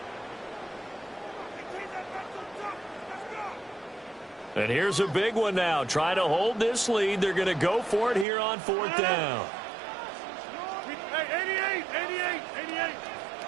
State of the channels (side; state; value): left; drops out; at 8.2 s